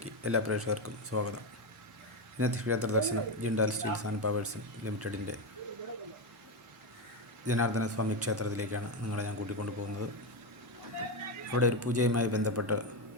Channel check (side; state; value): both; normal; correlation 0.10